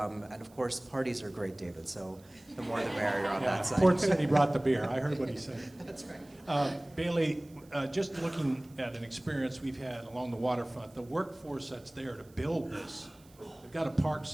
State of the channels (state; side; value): noise; right; hiss, 28 dB below the sound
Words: and of course, parties are great, David, so the more the merrier on that side. Port City brought the beer. I heard what he said. That's right. Bailey, just looking at an experience we've had along the waterfront, the workforce that's there to build this, they've got to park